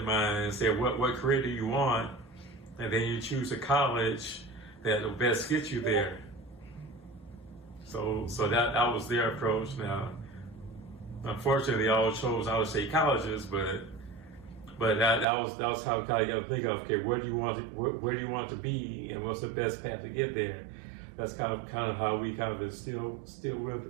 mind and say, what career do you want? And then you choose a college that will best get you there. So that was their approach. Now, unfortunately, they all chose out of state colleges, but that was how you got to think of, okay, where do you want to be, and what's the best path to get there? That's kind of how we kind of instill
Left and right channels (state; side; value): drops out; left; at 15.2 s